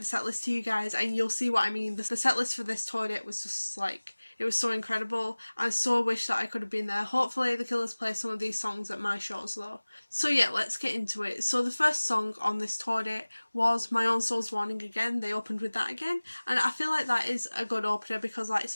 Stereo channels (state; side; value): inverted; both; correlation -1.00